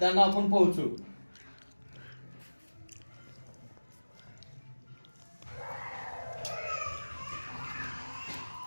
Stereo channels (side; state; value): both; inverted; correlation -1.00